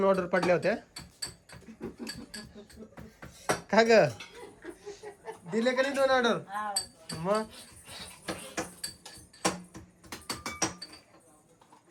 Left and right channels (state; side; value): identical; both; correlation 1.00